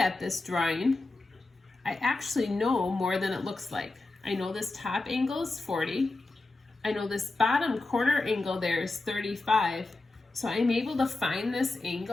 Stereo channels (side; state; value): right; quieter; 3.2 dB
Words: this drawing, I actually know more than it looks like. I know this top angle is 40. I know this bottom corner angle there is 35. So I'm able to find this